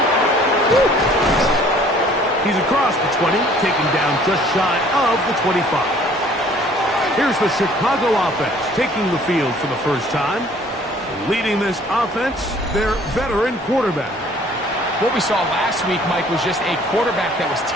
He's across the 20, taken down just shy of the 25. Here's the Chicago offense taking the field for the first time. Leading this offense, their veteran quarterback. What we saw last week, Mike, was just a quarterback that was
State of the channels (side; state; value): both; normal; correlation 0.55